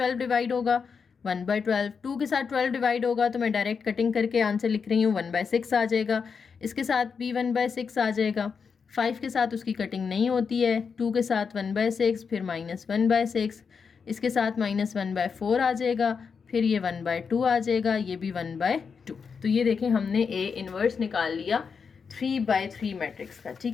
डिवाइड होगा 1/12, 2 के साथ 12 डिवाइड होगा तो मैं डायरेक्ट कटिंग करके आंसर लिख रही हूँ 1/6 आ जाएगा, इसके साथ भी 1/6 आ जाएगा, 5 के साथ उसकी कटिंग नहीं होती है, 2 के साथ 1/6, फिर -1/6, इसके साथ -1/4 आ जाएगा, फिर ये 1/2 आ जाएगा, ये भी 1/2। तो ये देखें हमने A इनवर्स निकाल लिया 3/3 मैट्रिक्स का,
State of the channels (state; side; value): quieter; right; 5.8 dB